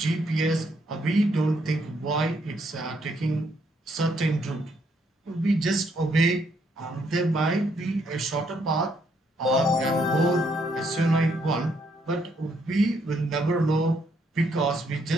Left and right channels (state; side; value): normal; both; correlation 0.72